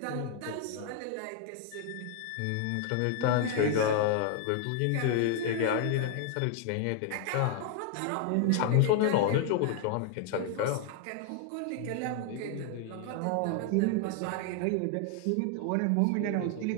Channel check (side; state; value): both; different; correlation 0.00